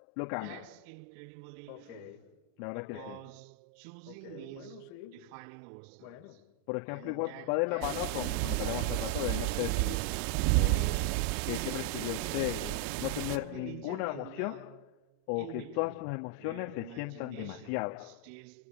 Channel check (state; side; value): different; both; correlation 0.00